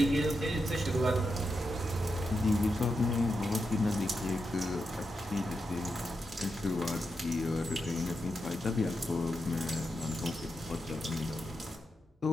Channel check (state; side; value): normal; both; correlation 0.86